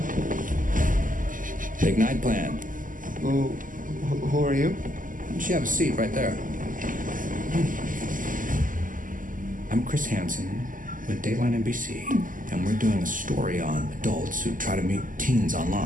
Big night plan. Who are you? Why don't you have a seat right there? I'm Chris Hansen with Dateline NBC, and we're doing a story on adults who try to meet teens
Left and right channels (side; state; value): left; late; 0.38 ms